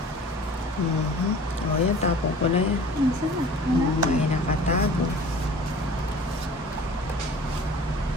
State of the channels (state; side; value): normal; both; correlation 0.45